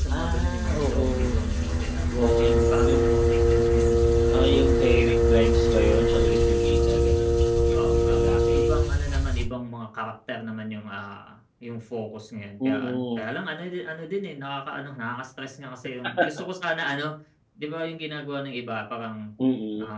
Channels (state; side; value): identical; both; correlation 1.00